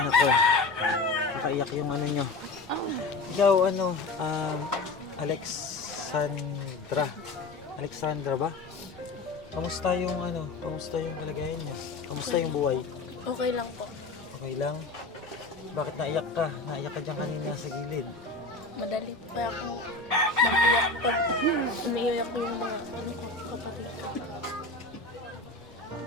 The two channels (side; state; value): right; quieter; 3.5 dB